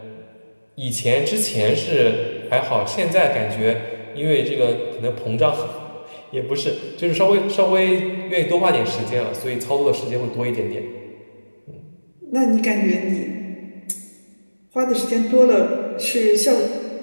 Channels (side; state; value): both; inverted; correlation -1.00